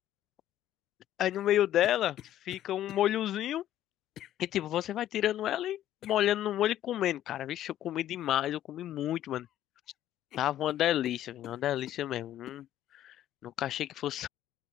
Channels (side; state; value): right; quieter; 12.4 dB